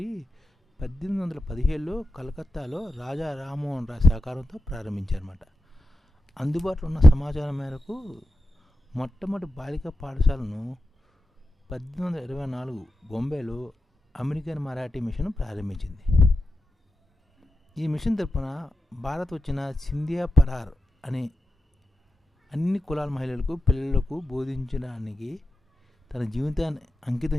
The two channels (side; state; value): both; normal; correlation 0.91